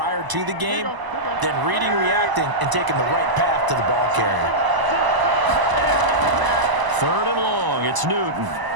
to the game, then reading, reacting, and taking the right path to the ball carrier. 3rd and long. It's Newton.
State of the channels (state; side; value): late; left; 1.0 ms